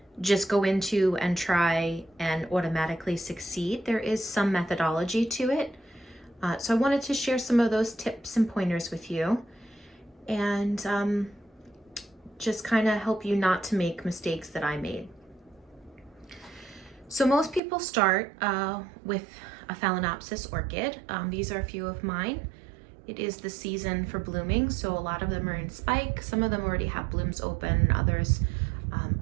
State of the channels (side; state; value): left; drops out; at 17.6 s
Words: just go into and try and automatically succeed. There is some methodology to it. So I wanted to share some of those tips and pointers with you and just kind of help you not to make mistakes that I made. So most people start with a Phalaenopsis orchid. These are a few of mine. It is the season for blooming, so a lot of them are in spike. Some of them already have blooms open, others